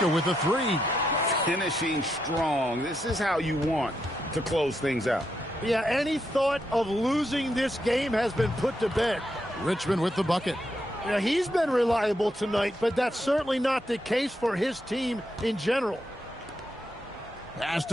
with a 3. Finishing strong. This is how you want to close things out. Yeah, any thought of losing this game has been put to bed. Richmond with the bucket. Yeah, he's been reliable tonight, but that's certainly not the case for his team in general. Pass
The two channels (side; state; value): both; normal; correlation 0.81